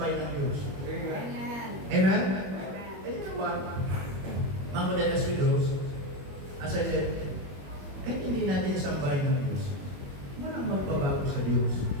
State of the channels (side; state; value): left; late; 21 ms